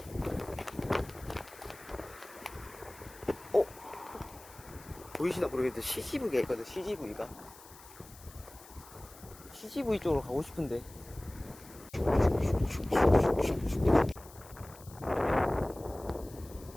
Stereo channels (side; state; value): left; noise; hiss, 20 dB below the sound